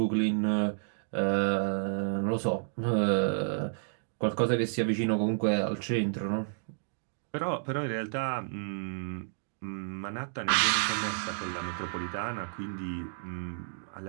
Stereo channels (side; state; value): left; silent; digital silence